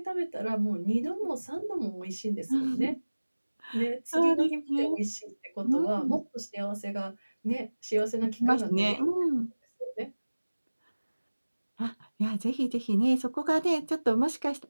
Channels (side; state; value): both; inverted; correlation -1.00